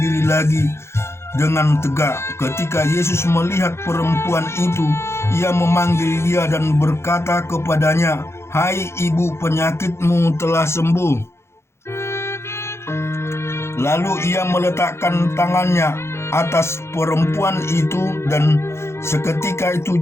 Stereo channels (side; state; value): right; late; 0.13 ms